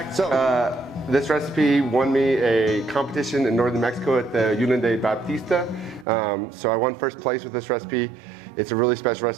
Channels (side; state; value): left; drops out; at 6.1 s